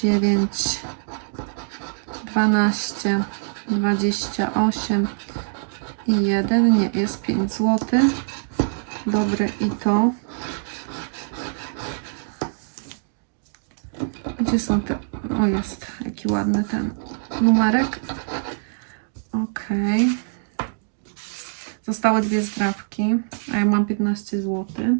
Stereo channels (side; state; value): left; silent; digital silence